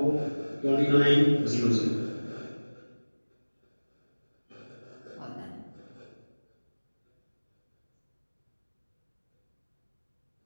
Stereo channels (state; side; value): inverted; both; correlation -1.00